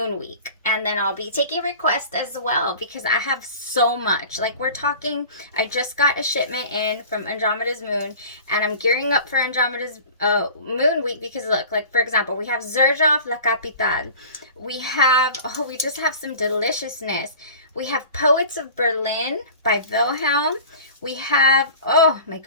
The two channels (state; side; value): inverted; both; correlation -0.40